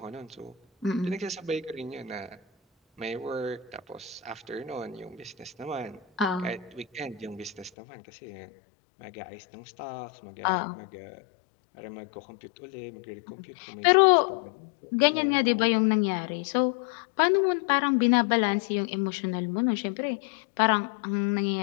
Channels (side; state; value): right; drops out; at 7.7 s